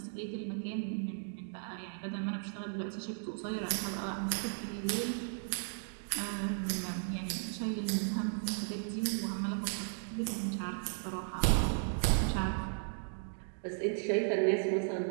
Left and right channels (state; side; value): silent; left; digital silence